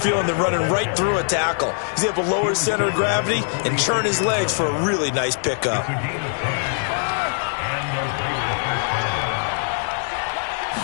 than running right through a tackle. He's able to lower his center of gravity and churn his legs for a really nice pickup.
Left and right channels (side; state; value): right; silent; digital silence